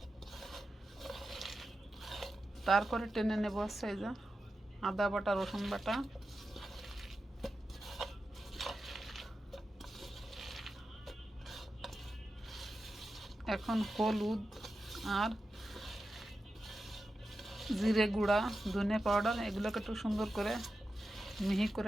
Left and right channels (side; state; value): both; normal; correlation 0.91